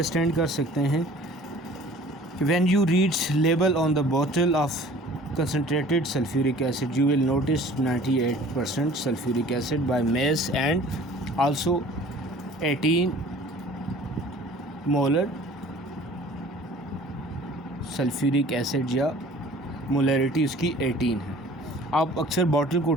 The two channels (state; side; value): normal; both; correlation 0.48